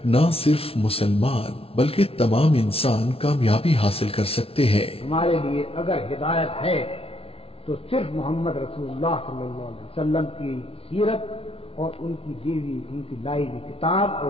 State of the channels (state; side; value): late; right; 0.27 ms